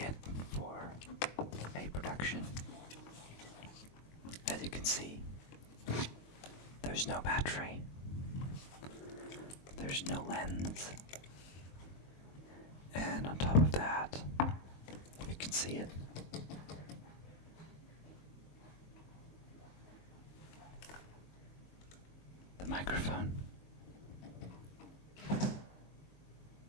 for a production. As you can see, there's no battery. There's no lens. And on top of that, if you can see it, the microphone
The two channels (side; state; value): right; late; 22 ms